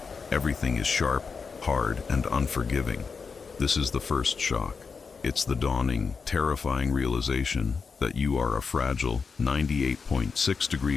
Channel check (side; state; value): right; quieter; 5.2 dB